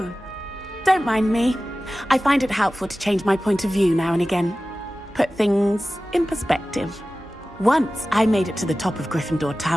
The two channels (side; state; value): both; normal; correlation 0.96